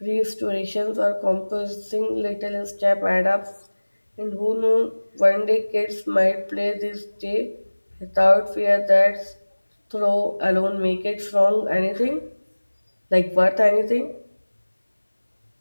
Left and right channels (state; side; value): inverted; both; correlation -1.00